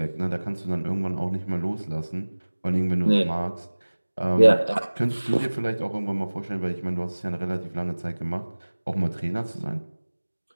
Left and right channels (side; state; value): both; inverted; correlation -1.00